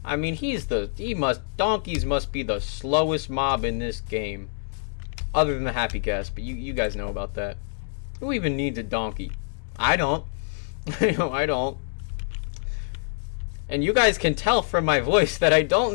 I mean, donkeys must be the slowest mob in this game. Other than the happy cast, but you guys know about that. Who even needs a donkey? I don't. I don't. And you guys can tell from my voice that I don't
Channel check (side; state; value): right; silent; digital silence